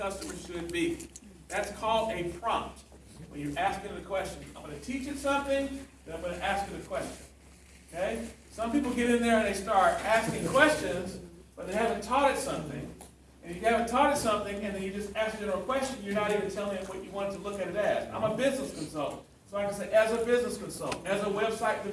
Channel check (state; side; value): identical; both; correlation 1.00